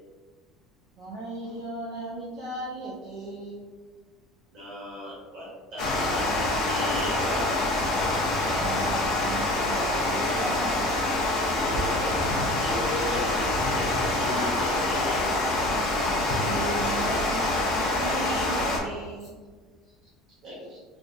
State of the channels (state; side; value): normal; both; correlation 0.40